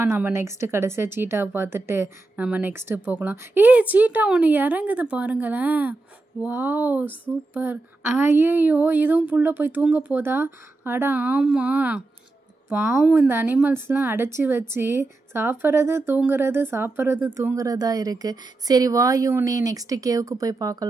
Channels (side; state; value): left; quieter; 3.2 dB